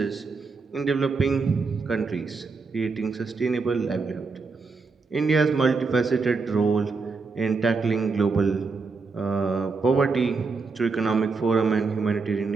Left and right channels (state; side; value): quieter; left; 4.4 dB